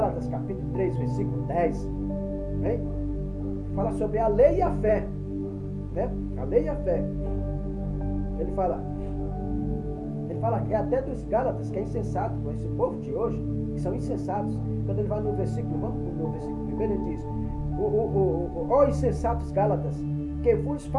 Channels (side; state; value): both; identical; correlation 1.00